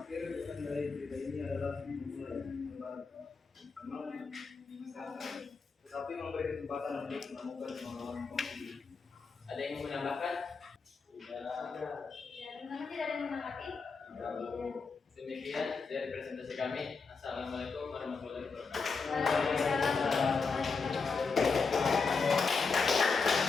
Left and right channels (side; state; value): right; quieter; 4.8 dB